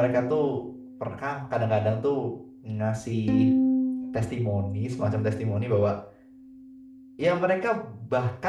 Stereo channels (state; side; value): identical; both; correlation 1.00